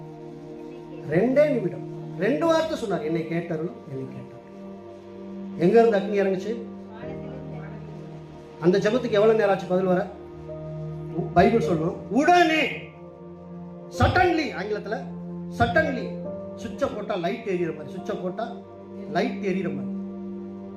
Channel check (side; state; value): both; identical; correlation 1.00